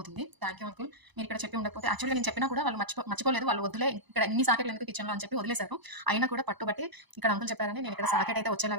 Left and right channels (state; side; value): late; left; 1.0 ms